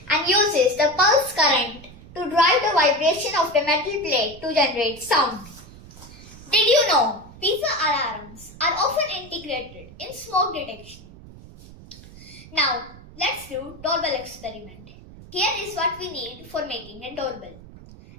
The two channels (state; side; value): noise; right; rumble, 19 dB below the sound